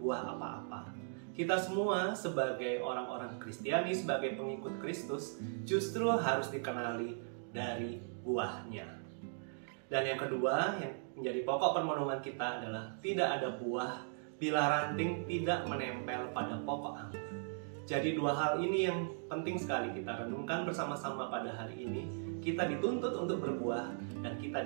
buah apa-apa. Kita semua sebagai orang-orang Kristiani, sebagai pengikut Kristus, justru harus dikenali dari buahnya. Dan yang kedua, yang menjadi pokok permenungan kita adalah tidak ada buah bila ranting tidak menempel pada pokok anggur. Jadi dua hal ini yang penting sekali kita renungkan bersama-sama pada hari ini. Kita dituntut untuk berbuah dan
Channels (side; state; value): left; silent; digital silence